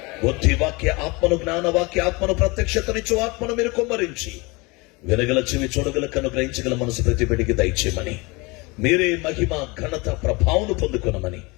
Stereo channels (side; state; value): right; quieter; 25.8 dB